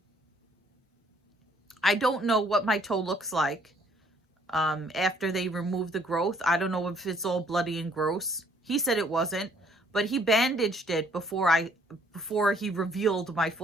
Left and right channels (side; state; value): both; normal; correlation 0.63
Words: don't know what my toe looks like after they remove the growth. I don't know if it's all bloody and gross. He said it wasn't, but he bandaged it before he revealed my